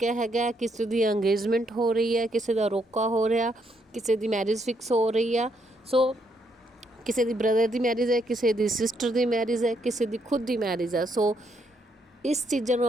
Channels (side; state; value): both; normal; correlation 0.75